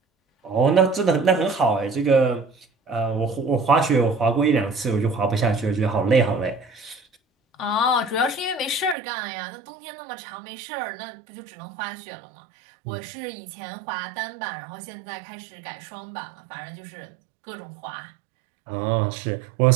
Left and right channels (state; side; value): drops out; left; at 9.0 s